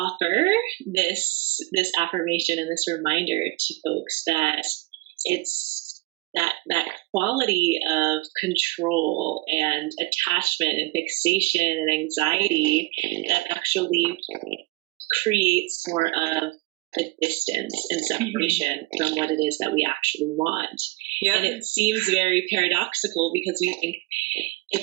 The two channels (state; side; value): quieter; left; 21.0 dB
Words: this affirmation and this reminder to folks that it's that quality of control and attachment and fixation and anxiety that actually creates more of a distance and separation from what it is that we actually want. Yeah. And it seems very paradoxical because we think